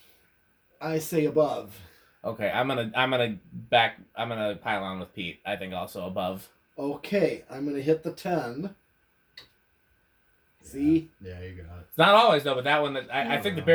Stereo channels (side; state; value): both; identical; correlation 1.00